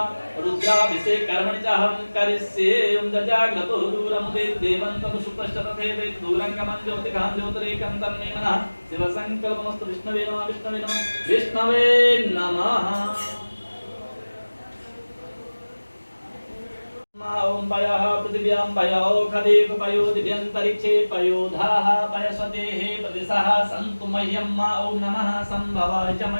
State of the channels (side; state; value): both; inverted; correlation -1.00